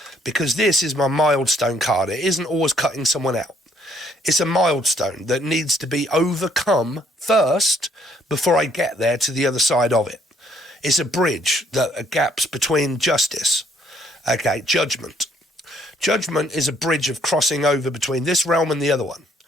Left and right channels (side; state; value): both; normal; correlation 0.67